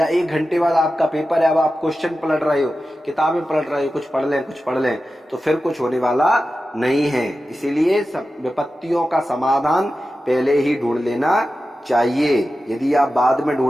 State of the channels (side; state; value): both; normal; correlation 0.93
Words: 1 घंटे बाद आपका पेपर है, अब आप क्वेश्चन पलट रहे हो, किताबें पलट रहे हो, कुछ पढ़ लें, तो फिर कुछ होने वाला नहीं है। इसीलिए विपत्तियों का समाधान पहले ही ढूंढ लेना चाहिए। यदि आप बाद में